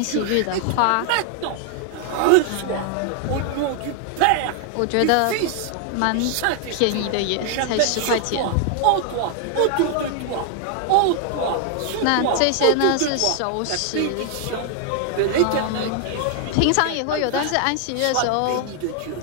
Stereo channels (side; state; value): both; different; correlation 0.00